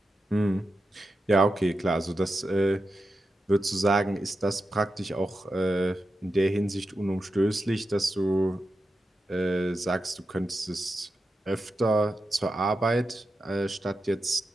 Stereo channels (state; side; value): normal; both; correlation 0.89